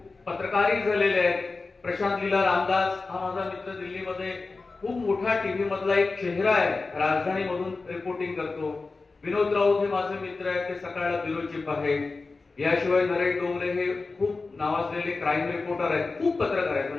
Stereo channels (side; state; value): right; quieter; 3.9 dB